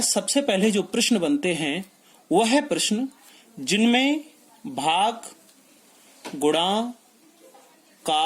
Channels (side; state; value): both; identical; correlation 1.00